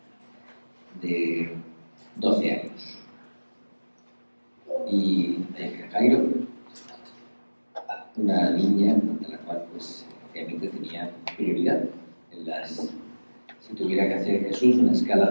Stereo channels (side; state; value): both; inverted; correlation -1.00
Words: de 12 años. Y Jairo, una niña de la cual pues obviamente tenía prioridad en las... Si tuviera que hacer Jesús una